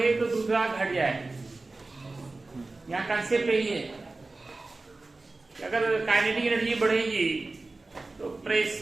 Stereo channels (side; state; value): left; quieter; 3.3 dB